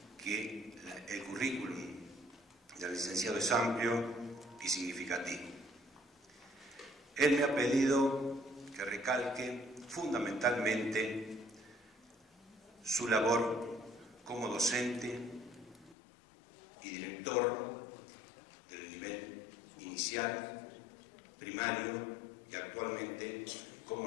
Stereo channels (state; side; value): drops out; right; at 16.0 s